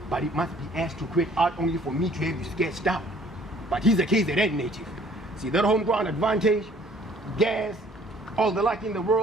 but it must be asked to quit art only for me to have you sketched out. But he's a KZN native. See that home ground advantage, gas, all the luck in the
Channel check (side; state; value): both; normal; correlation 0.57